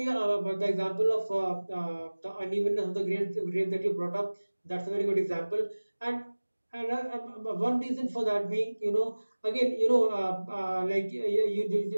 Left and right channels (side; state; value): both; inverted; correlation -1.00